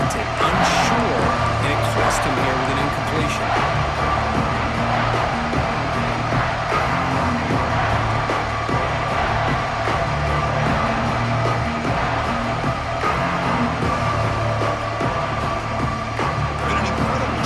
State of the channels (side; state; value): both; identical; correlation 1.00